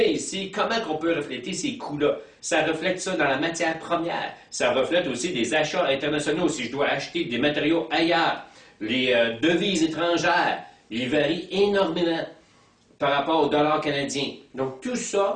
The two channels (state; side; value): identical; both; correlation 1.00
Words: ici, comment on peut refléter ces coûts-là? Ça reflète ça dans la matière première. Ça reflète aussi des achats internationaux. Si je dois acheter des matériaux ailleurs, les devises étrangères, ils varient énormément par rapport au dollar canadien. Donc, tout